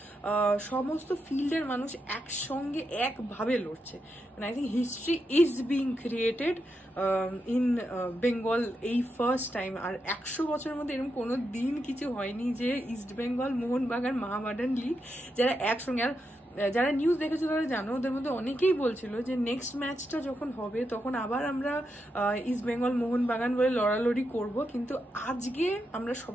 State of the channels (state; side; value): normal; both; correlation 0.85